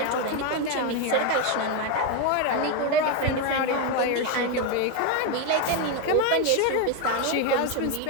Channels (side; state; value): both; different; correlation 0.02